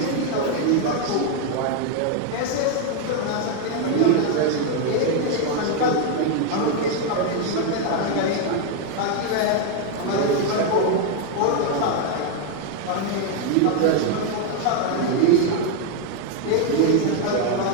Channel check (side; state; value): both; different; correlation 0.01